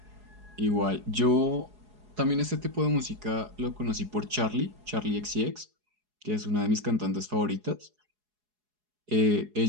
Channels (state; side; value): late; left; 4.8 ms